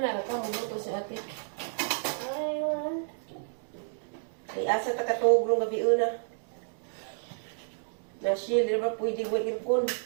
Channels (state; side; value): silent; left; digital silence